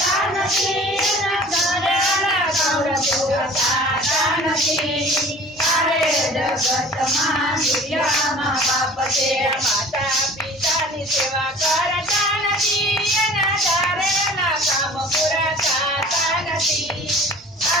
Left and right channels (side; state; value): both; normal; correlation 0.45